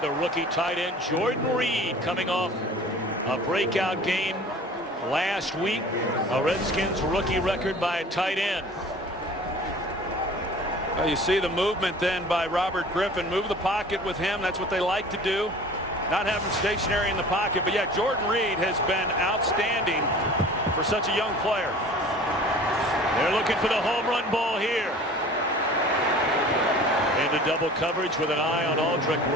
the rookie tight end Jordan Reed, coming off a breakout game last week. A Redskins rookie record by a tight end. Well, you see the movement then by Robert Griffin. Move the pocket with him. That's what they like to do. Not have him stationary in the pocket. But yeah, Jordan Reed has been outstanding for such a young player. They're looking for the home run ball here. Into double coverage with an eye on Aldrick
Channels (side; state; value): both; normal; correlation 0.44